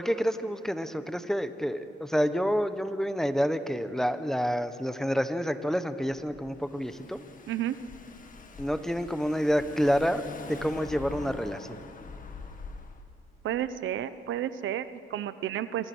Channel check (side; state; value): both; normal; correlation 0.85